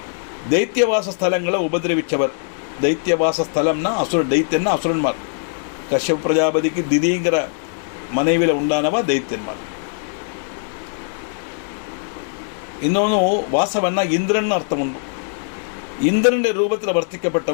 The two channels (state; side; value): silent; right; 62 dB below the other